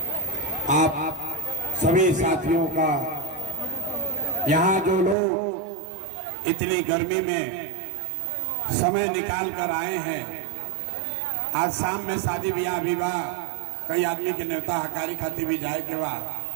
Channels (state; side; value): drops out; left; at 5.2 s